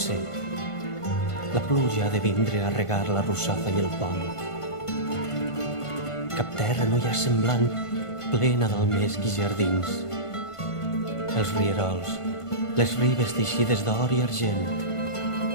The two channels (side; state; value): right; late; 1.5 ms